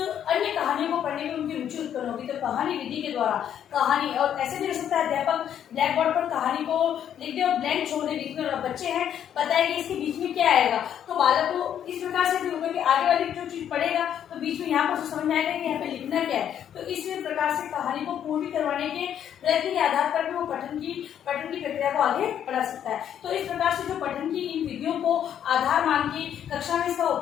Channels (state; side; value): quieter; right; 9.6 dB